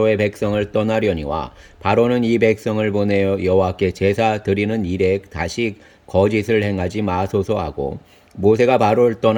백성을 떠나려니와 바로는 이 백성을 보내어 여호와께 제사 드리는 일에 다시 거짓을 행하지 마소서 하고 모세가 바로를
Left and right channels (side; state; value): both; identical; correlation 1.00